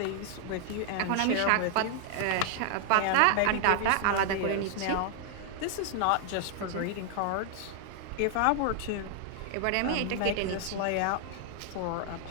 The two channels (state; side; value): different; both; correlation 0.00